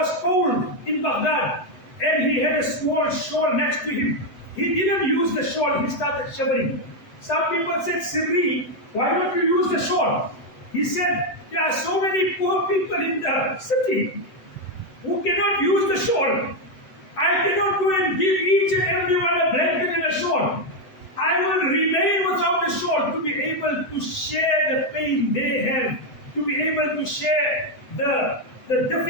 cold in Baghdad and he had a small shawl next to him. He didn't use the shawl, he started shivering. Some people said, "Sirri, why don't you use the shawl?" He said, "There are so many poor people in the city who cannot use the shawl. I cannot go and give each and everyone a blanket and a shawl. I will remain without the shawl to be able to share the pain they have, to be able to share the the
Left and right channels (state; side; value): late; right; 8.0 ms